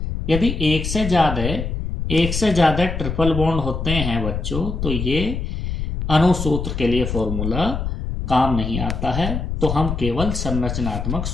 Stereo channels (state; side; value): noise; left; rumble, 4 dB below the sound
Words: यदि एक से ज्यादा ट्रिपल बॉन्ड होते हैं बच्चों तो ये अणुसूत्र के लिए फॉर्मूला काम नहीं आता है, तो हम केवल संरचनात्मक